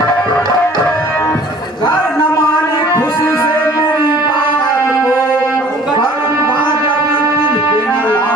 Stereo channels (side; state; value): both; normal; correlation 0.51